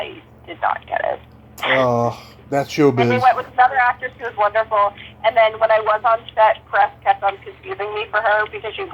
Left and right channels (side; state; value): both; identical; correlation 1.00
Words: did not get it. Oh, that's showbiz. And they went with another actress who was wonderful. And then when I was on set, press kept on confusing me for her because